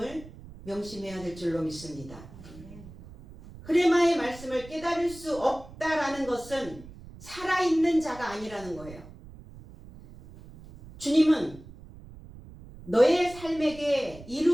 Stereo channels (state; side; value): noise; right; rumble, 18 dB below the sound